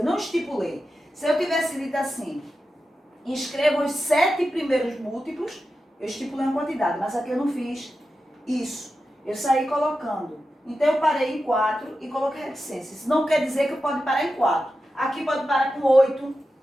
não estipulei. Se eu tivesse dito assim, escreva os 7 primeiros múltiplos, eu estipulei uma quantidade, mas aqui eu não fiz isso. Eu saí colocando. Então eu parei em 4 e coloquei reticência. Isso não quer dizer que eu pode parar em 4. Aqui pode parar com 8,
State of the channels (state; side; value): normal; both; correlation 0.91